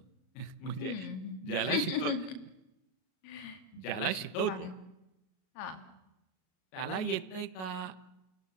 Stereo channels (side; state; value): right; late; 38 ms